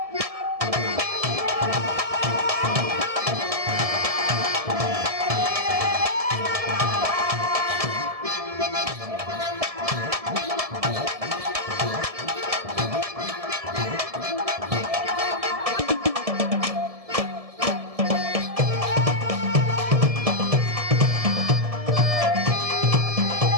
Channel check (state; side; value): late; left; 1.7 ms